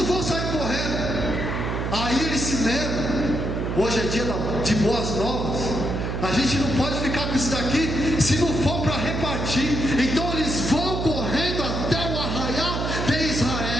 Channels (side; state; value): right; noise; hum, 2 dB below the sound